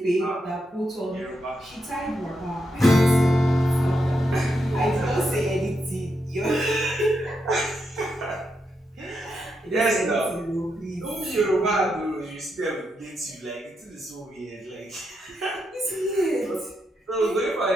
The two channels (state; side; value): normal; both; correlation 0.83